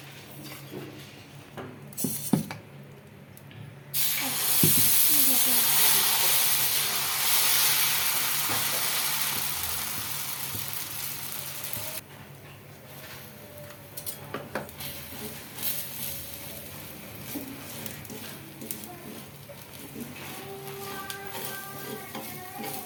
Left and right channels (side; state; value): both; identical; correlation 1.00